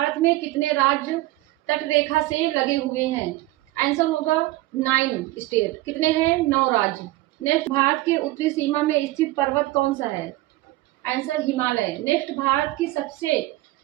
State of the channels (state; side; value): quieter; left; 17.9 dB